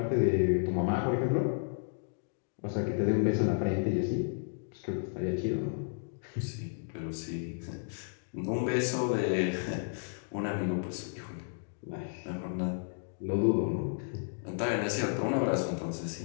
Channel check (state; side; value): silent; right; digital silence